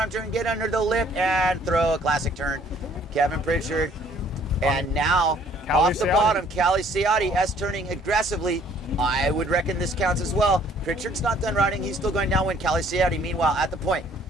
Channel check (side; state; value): both; normal; correlation 0.60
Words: turn, get under the lip, and throw a classic turn. Kevin Pritchard. And now, off the bottom, Callie Ciati S-turning aggressively. I would reckon this counts as well. Pritchard's not done riding. He's still going downwind. Callie Ciati, meanwhile, at the point.